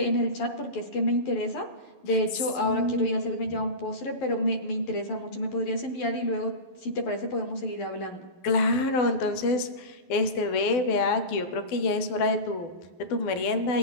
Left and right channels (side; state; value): right; late; 12 ms